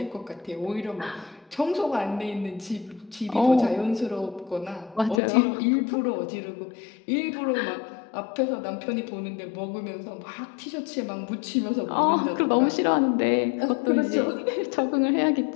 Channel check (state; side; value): drops out; right; at 5.2 s